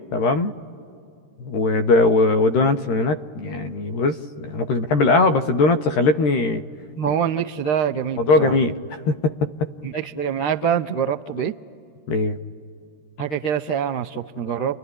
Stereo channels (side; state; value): right; late; 13 ms